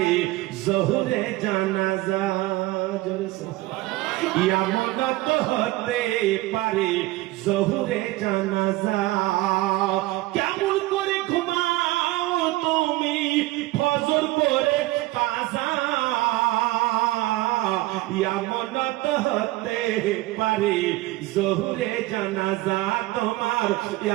জোহরে জানাজা, এমনত হতে পারে জোহরে জানাজা। কেমন করে ঘুমাও তুমি ফজর করে কাজা, এমনত হতে পারে জোহরে জানাজা তোমার,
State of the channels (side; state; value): left; quieter; 18.8 dB